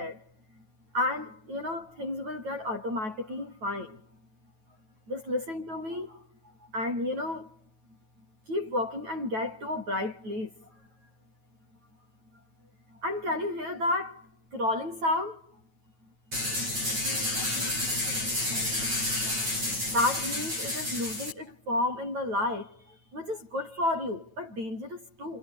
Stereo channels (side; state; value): left; late; 9.2 ms